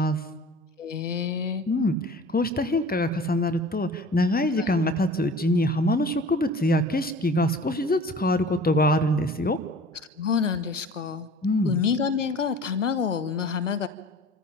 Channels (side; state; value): both; normal; correlation 0.44